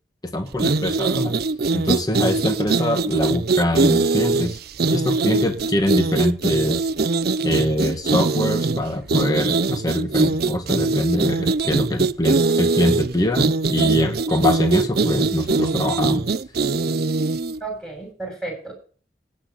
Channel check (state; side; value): normal; both; correlation 0.54